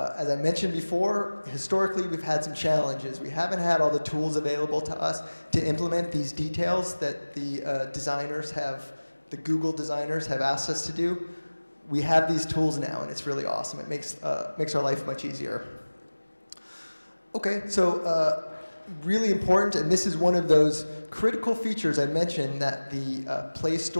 I mentioned before, historically we've had some challenges. We haven't had all the tools available to us to implement these details that the designers have, the Google designers have asked us to do. We have these tools now, and it's really awesome. It makes our life much easier. Okay, so really important, and this is one of those critical features I mentioned that the Play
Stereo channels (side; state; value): both; inverted; correlation -1.00